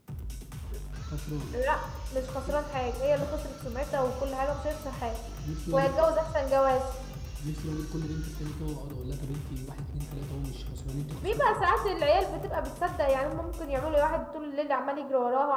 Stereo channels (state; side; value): identical; both; correlation 1.00